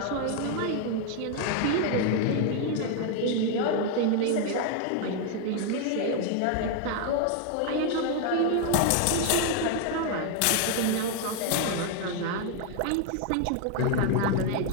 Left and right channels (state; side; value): different; both; correlation 0.01